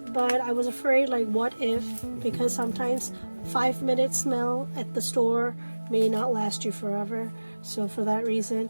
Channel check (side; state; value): both; inverted; correlation -1.00